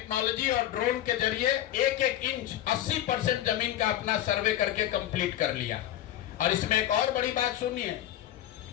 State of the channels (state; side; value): quieter; right; 12.6 dB